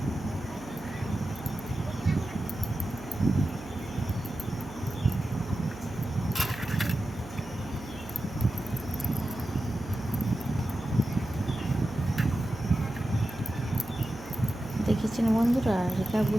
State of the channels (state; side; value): noise; right; hum, 15 dB below the sound